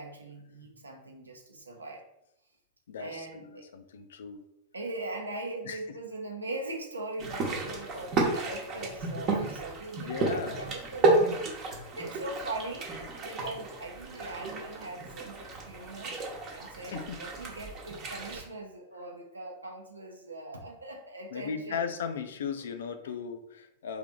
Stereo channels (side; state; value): both; normal; correlation -0.05